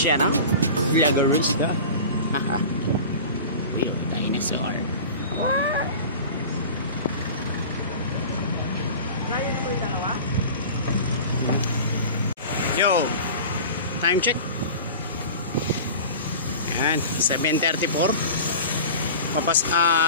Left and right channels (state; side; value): inverted; both; correlation -0.35